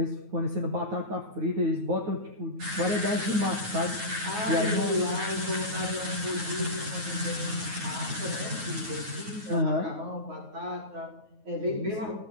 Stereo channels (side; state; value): left; late; 9.4 ms